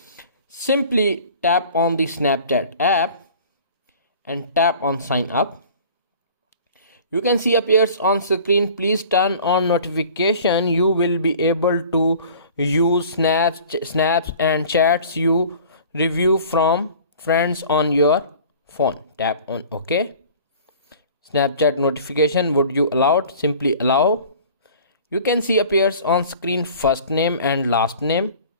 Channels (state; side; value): inverted; both; correlation -0.45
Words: Simply tap on the Snapchat app and tap on sign up. You can see appears on screen. Please turn on notification. You will be able to use snaps and chats you review from friends on your phone. Tap on OK. Snapchat notification, would you allow it? Simply allow. You can see appears on screen first name and last name,